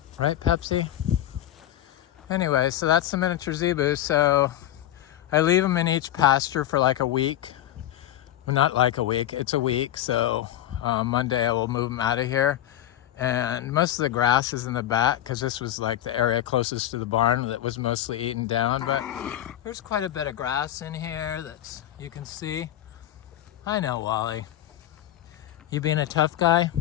Right, Pepsi? Anyway, so that's the miniature zebu. So I leave them in each pasture for like a week. Well, not like a week, it's a week. So Monday I will move them out of here. And most of the grass is in the back, because this was like the area closest to the barn that was mostly eaten down. But there's quite a bit of grass in here that you can see. I know, Wally. You being a tough guy?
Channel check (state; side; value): quieter; right; 12.8 dB